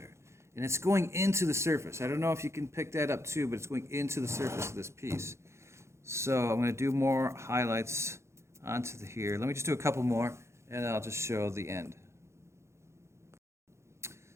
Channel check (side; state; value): left; late; 0.13 ms